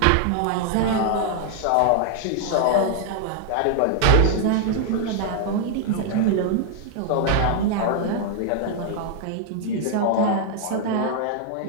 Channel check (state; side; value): different; both; correlation 0.00